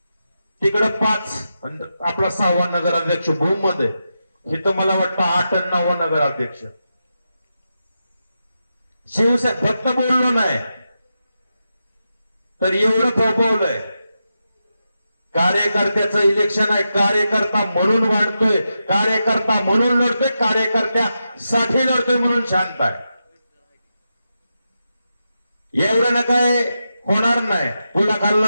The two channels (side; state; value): both; inverted; correlation -0.88